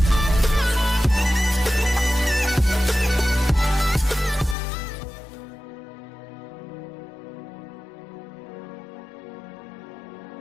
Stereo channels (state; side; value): drops out; right; at 4.5 s